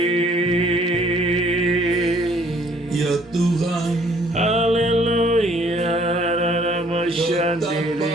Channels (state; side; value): normal; both; correlation 0.60